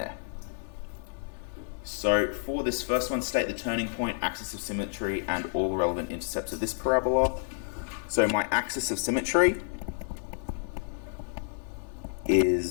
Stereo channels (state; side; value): silent; right; 58 dB below the other